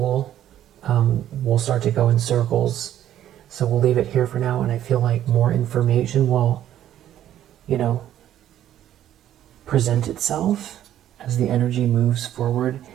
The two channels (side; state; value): left; quieter; 11.6 dB